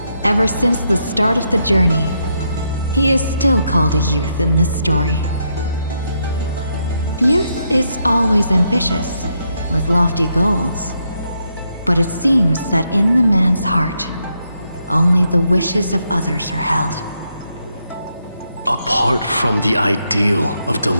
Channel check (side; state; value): both; inverted; correlation -0.79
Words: Ever since the start of the journey, he is still called a youth in this story. Youth is always ambitious, with lofty goals. But it seems that in the man's heart, only the wishes of others are held. Apart from the ideal of